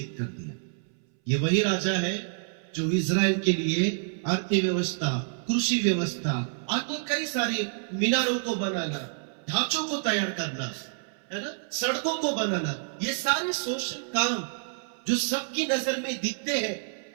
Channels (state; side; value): silent; left; 59 dB below the other